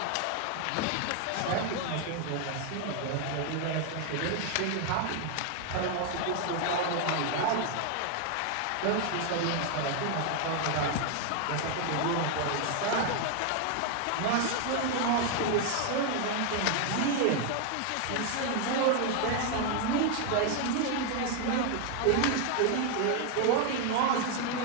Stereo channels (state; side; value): different; both; correlation 0.00